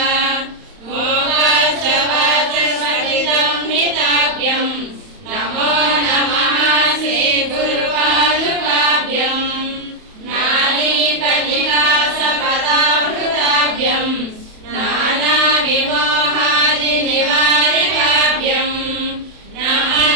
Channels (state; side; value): late; left; 31 ms